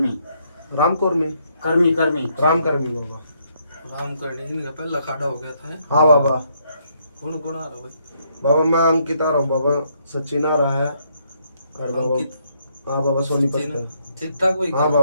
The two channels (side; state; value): both; inverted; correlation -0.72